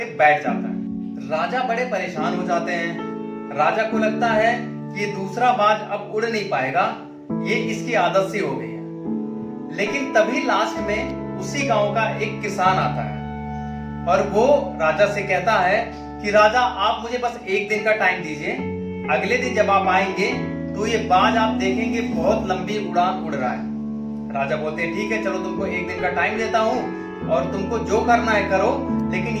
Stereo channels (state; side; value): identical; both; correlation 1.00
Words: बैठ जाता है। राजा बड़े परेशान हो जाते हैं। राजा को लगता है कि ये दूसरा बाज अब उड़ नहीं पाएगा, ये इसकी आदत सी हो गई है। लेकिन तभी लास्ट में उसी गांव का एक किसान आता है और वो राजा से कहता है कि राजा, आप मुझे बस 1 दिन का टाइम दीजिए। अगले दिन जब आप आएंगे तो ये बाज आप देखेंगे बहुत लंबी उड़ान उड़ रहा है। राजा बोलते हैं ठीक है, चलो तुमको 1 दिन का टाइम देता हूं और तुमको जो करना है करो, लेकिन